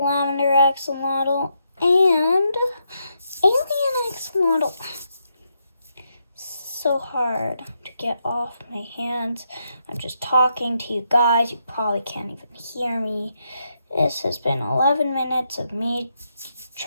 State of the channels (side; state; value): both; inverted; correlation -0.80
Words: axolotl and Alien axolotl. So hard to get off my hands. I'm just talking to you guys. You probably can't even hear me. This has been 11 minutes of me